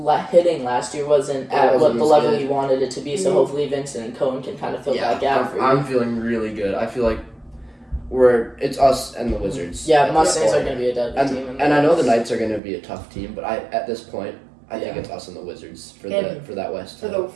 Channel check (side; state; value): left; drops out; at 12.6 s